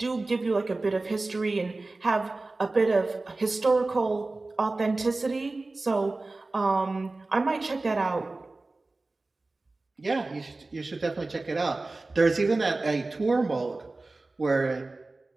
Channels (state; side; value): quieter; left; 3.2 dB